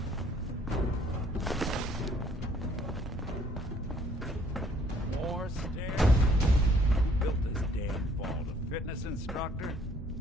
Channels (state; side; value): normal; both; correlation 0.62